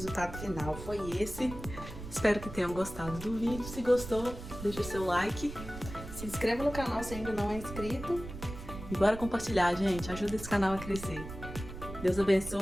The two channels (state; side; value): noise; right; rumble, 11 dB below the sound